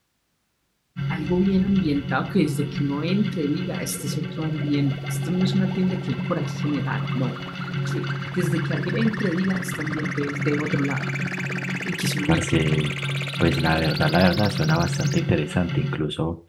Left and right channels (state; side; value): identical; both; correlation 1.00